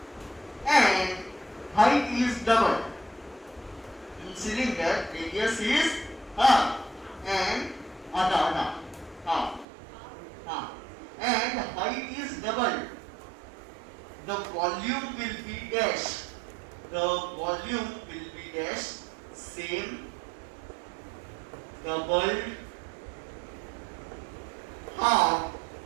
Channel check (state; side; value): drops out; left; at 9.7 s